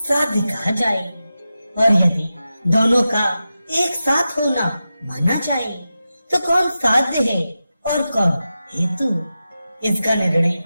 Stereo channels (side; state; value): both; inverted; correlation -0.92